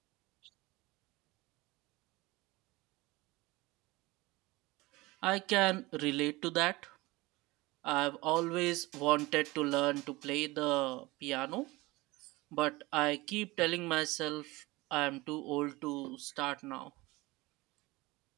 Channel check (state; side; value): quieter; left; 21.5 dB